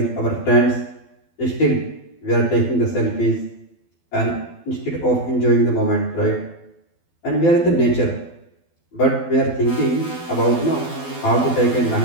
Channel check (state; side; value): late; right; 12 ms